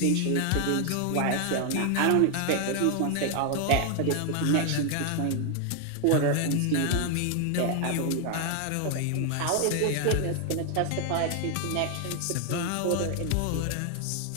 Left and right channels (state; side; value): different; both; correlation 0.00